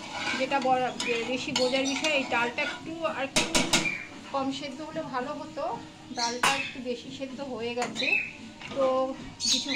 যেটা বেশি বোঝার বিষয়, এই ডালটা একটু আর একটু কম সেদ্ধ হলে ভালো হতো। ডালটা একটু বেশি সেদ্ধ হয়ে গেছে, তো কিছু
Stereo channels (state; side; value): identical; both; correlation 1.00